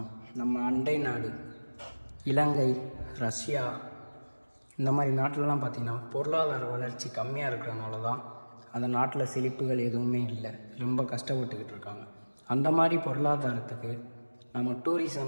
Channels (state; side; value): inverted; both; correlation -1.00